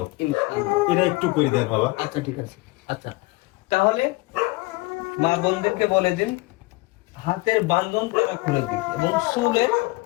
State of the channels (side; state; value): right; quieter; 23.3 dB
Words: ইনশাআল্লাহ। এটা একটু করে দেন বাবা। আচ্ছা ঠিক আছে। আচ্ছা, তাহলে মা বোনদেরকে বলে দিন হাতের বান্ধন তারা খুলে দিক এবং চুলের